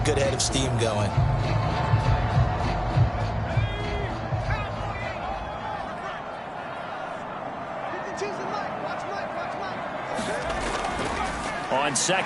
good head of steam going. On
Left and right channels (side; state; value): both; identical; correlation 1.00